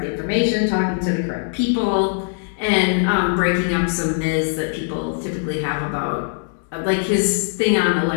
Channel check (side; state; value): right; silent; digital silence